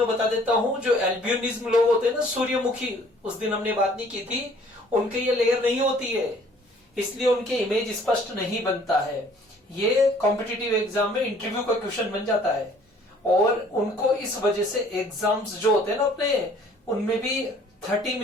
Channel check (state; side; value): normal; both; correlation 0.56